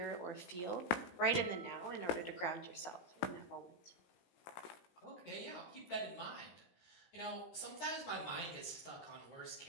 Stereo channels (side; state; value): right; late; 18 ms